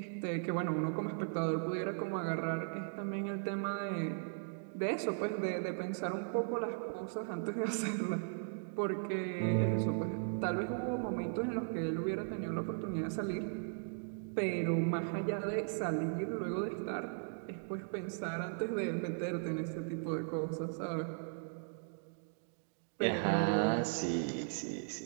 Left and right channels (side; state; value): left; silent; digital silence